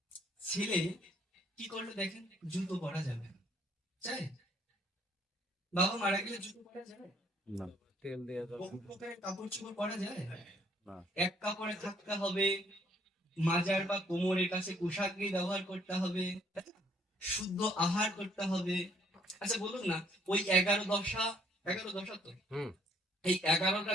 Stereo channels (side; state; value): both; normal; correlation 0.64